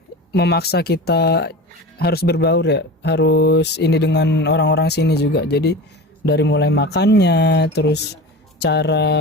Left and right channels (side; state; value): both; normal; correlation 0.31